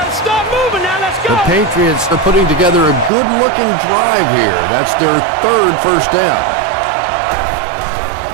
to stop moving now. Let's go. The Patriots are putting together a good-looking drive here. That's their 3rd first down.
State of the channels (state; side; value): drops out; left; at 3.1 s